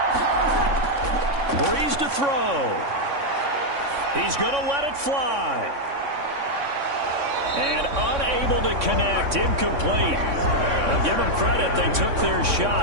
Breeze to throw. He's going to let it fly. And unable to connect, incomplete. I'll give them credit, they took their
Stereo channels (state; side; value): late; left; 3.6 ms